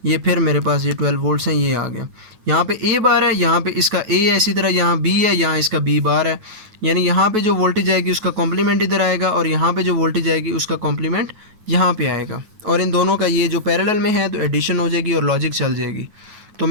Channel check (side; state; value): left; late; 9.3 ms